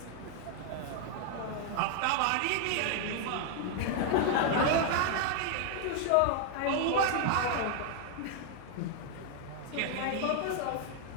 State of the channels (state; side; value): different; both; correlation 0.00